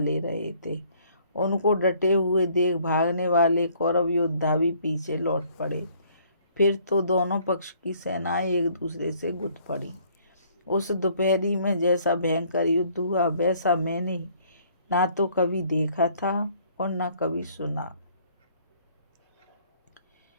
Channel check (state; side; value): inverted; both; correlation -0.61